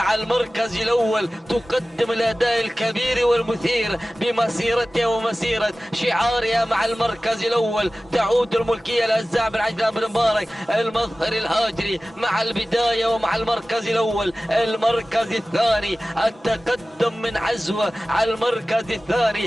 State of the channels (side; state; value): both; normal; correlation 0.96